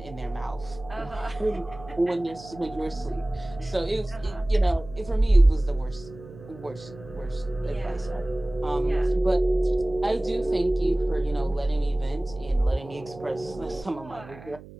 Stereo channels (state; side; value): noise; right; hum, 18 dB below the sound